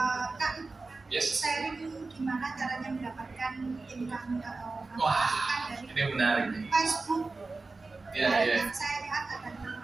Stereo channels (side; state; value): left; quieter; 3.7 dB